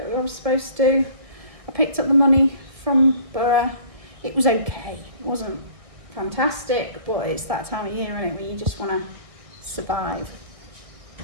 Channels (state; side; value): late; left; 1.4 ms